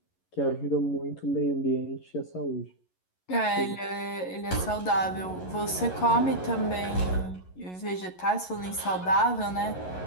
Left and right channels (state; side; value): late; right; 11 ms